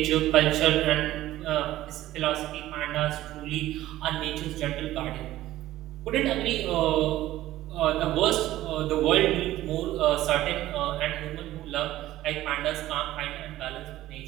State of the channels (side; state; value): left; quieter; 15.0 dB